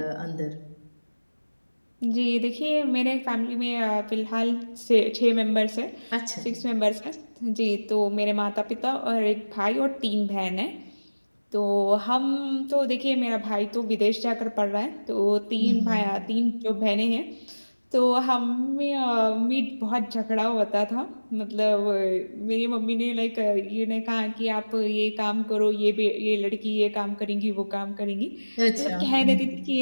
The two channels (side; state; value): both; inverted; correlation -1.00